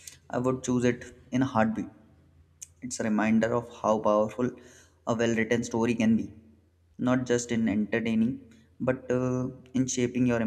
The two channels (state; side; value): identical; both; correlation 1.00